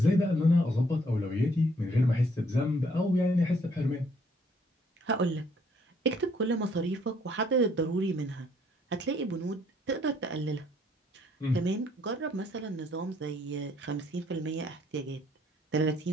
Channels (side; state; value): both; normal; correlation 0.65